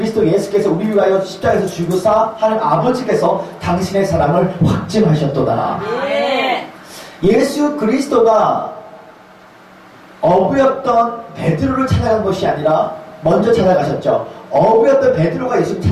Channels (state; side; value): identical; both; correlation 1.00